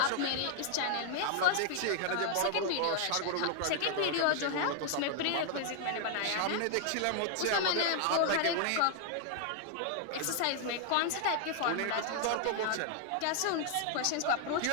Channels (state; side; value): different; both; correlation 0.00